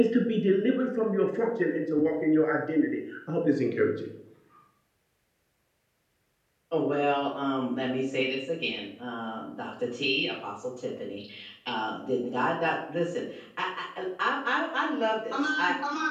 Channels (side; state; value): both; identical; correlation 1.00